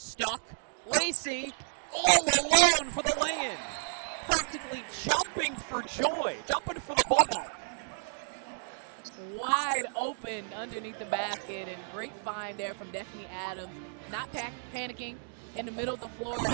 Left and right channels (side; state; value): left; silent; digital silence